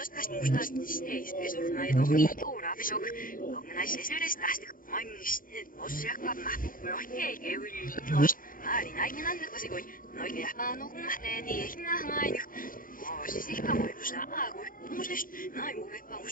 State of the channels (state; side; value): late; right; 0.40 ms